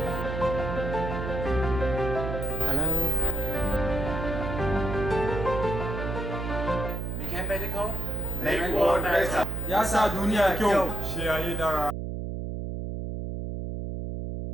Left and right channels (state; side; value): noise; right; hum, 4 dB below the sound